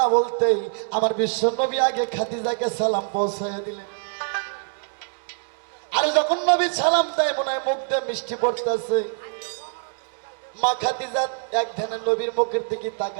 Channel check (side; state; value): left; silent; digital silence